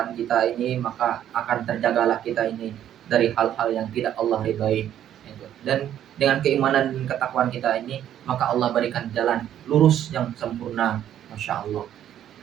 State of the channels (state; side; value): quieter; left; 10.8 dB